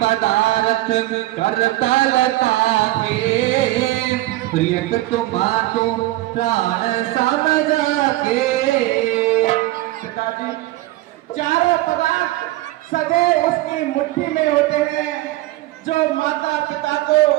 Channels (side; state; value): left; quieter; 17.4 dB